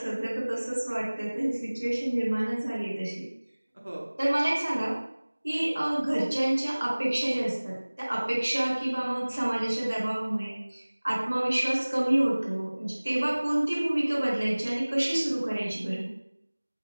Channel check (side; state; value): both; inverted; correlation -1.00